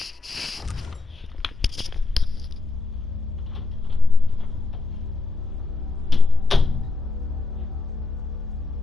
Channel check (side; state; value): right; quieter; 3.9 dB